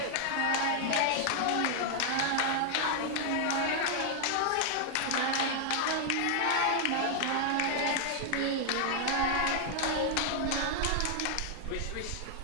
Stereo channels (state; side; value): different; both; correlation 0.00